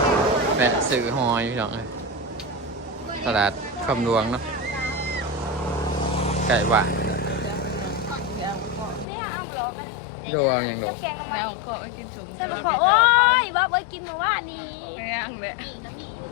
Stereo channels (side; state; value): right; drops out; at 9.1 s